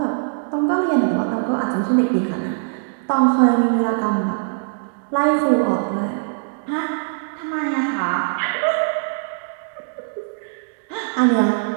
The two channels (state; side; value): silent; left; digital silence